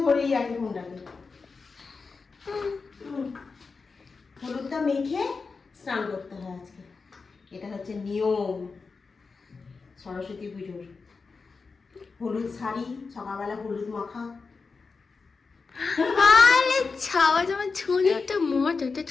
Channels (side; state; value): right; quieter; 4.6 dB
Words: ধরেই আছে ফোনটাকে। হলুদটা মেখে স্নান করতে হয় আজকে, এটা হচ্ছে নিয়ম সরস্বতী পুজোর। হলুদ শাড়ি, সকালবেলা হলুদ মাখা। আরে ছাওয়া জামা ছোনো একটা মজা, একটা